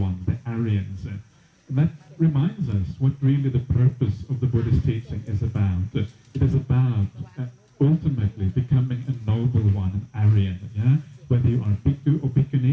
the Aryans. And that reminds us what really the purpose of the Buddhist teaching is about. It is about ultimately becoming a noble one, an Aryan. Yeah? Whether you are bhikkhu or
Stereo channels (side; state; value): both; identical; correlation 1.00